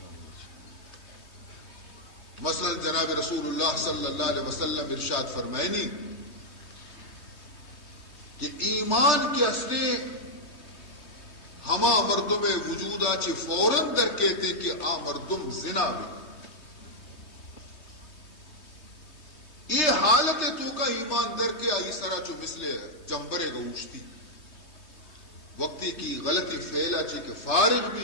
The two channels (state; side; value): late; right; 3.2 ms